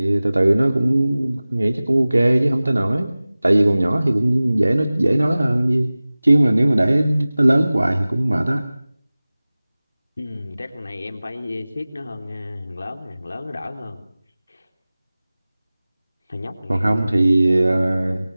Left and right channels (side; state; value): both; inverted; correlation -0.98